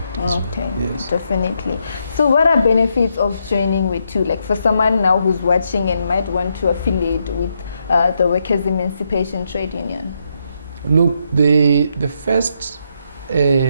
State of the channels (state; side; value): inverted; both; correlation -0.79